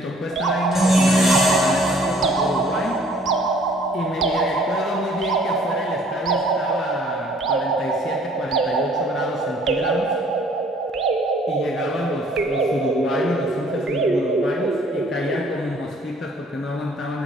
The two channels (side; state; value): both; normal; correlation 0.58